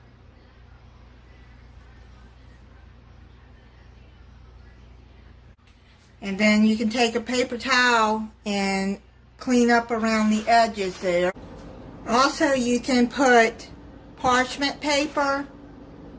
And then you can take a paper towel and clean up around the edges there. Also, you can put parchment paper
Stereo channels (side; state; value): both; identical; correlation 1.00